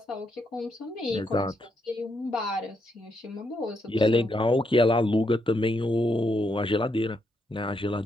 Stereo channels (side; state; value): both; normal; correlation 0.79